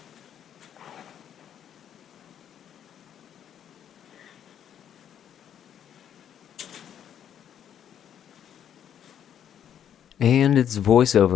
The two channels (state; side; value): quieter; right; 9.5 dB